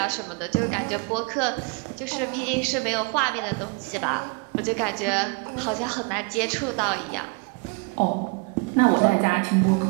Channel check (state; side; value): quieter; left; 31.9 dB